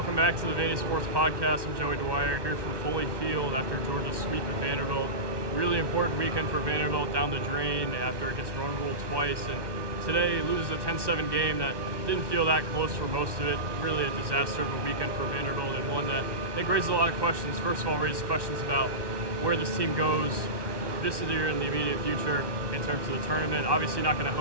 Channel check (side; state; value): left; late; 1.2 ms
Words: back to the Vandy Sports Podcast. I'm Joey Dwyer here from Foley Field after Georgia's sweep of Vanderbilt. Really important weekend for Vanderbilt down the drain after it gets run ruled twice. And today loses a 10-7 game that didn't feel that close for most of it. Really a disaster of a weekend for Vanderbilt, and one that I think raises a lot of questions. First of all, raises questions about where this team goes this year in the immediate future in terms of the tournament. Obviously not going to